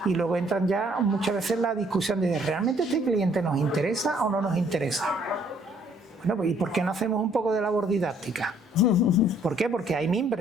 y luego entran ya muchas veces en la discusión de ¿realmente este cliente nos interesa o no nos interesa? Bueno, pues ¿y por qué no hacemos un poco de labor didáctica? ¿Por qué? Porque hay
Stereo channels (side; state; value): both; normal; correlation 0.63